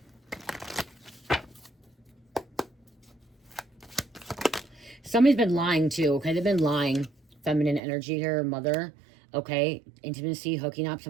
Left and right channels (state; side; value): drops out; left; at 7.8 s